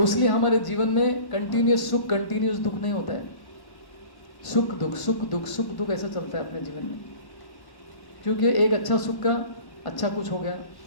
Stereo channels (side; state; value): right; late; 1.1 ms